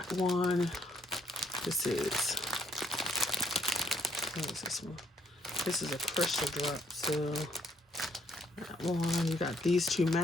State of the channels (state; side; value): normal; both; correlation 0.70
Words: one. This is, what is this one? This is a crystal drop, so that one. You got these two